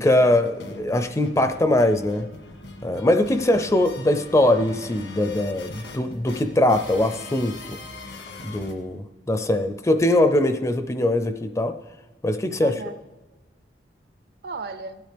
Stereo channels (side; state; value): both; normal; correlation 0.70